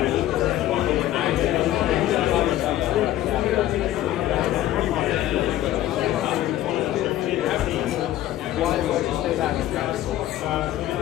Why did you stay back in France?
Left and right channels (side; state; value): right; quieter; 13.7 dB